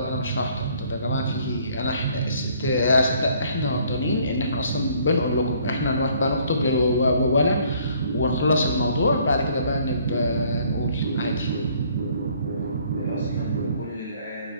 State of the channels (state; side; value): inverted; both; correlation -0.61